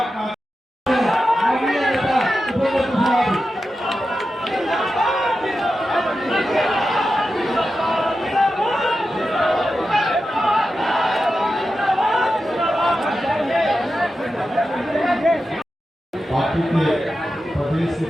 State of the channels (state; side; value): normal; both; correlation 0.91